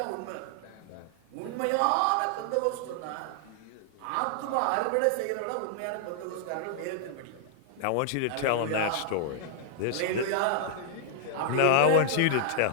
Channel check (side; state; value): both; different; correlation -0.01